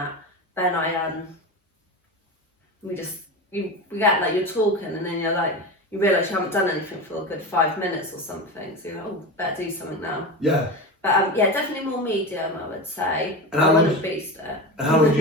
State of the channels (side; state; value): both; normal; correlation 0.24